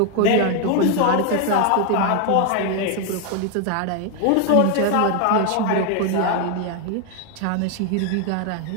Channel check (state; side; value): different; both; correlation 0.01